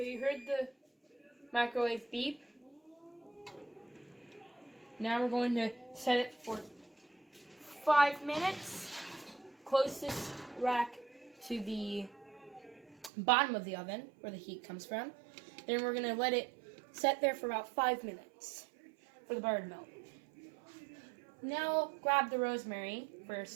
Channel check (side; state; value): left; drops out; at 13.1 s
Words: you heard the microwave beep. Now we're going to set it for 5 minutes. Closest rack to the bottom of the oven, where the heat comes from. Then we're going to let it set there for about 5 minutes for the butter to melt. Now grab the rosemary for your